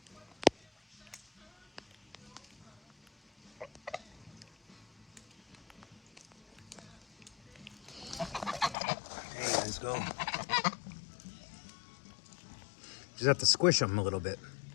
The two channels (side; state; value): right; drops out; at 8.8 s